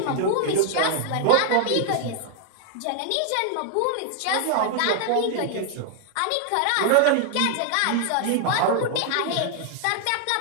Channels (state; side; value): different; both; correlation 0.00